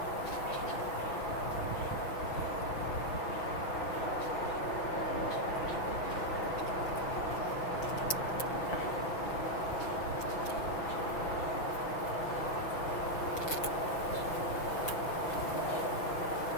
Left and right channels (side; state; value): right; late; 6.0 ms